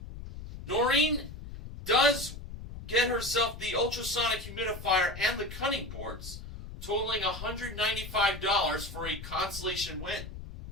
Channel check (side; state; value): left; noise; rumble, 11 dB below the sound